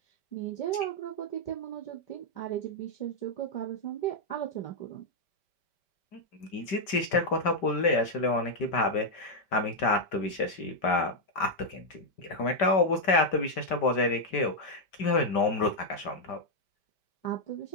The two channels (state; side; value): late; right; 5.1 ms